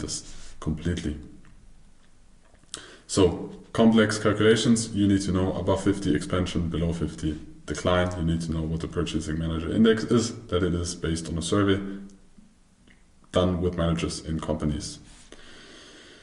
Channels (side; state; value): both; identical; correlation 1.00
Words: completely. So complex calculations, you need to know above 50 expansion, below 50 decline. You need to know what the Purchasing Manager Index is, that it is based on a survey done with managers in companies.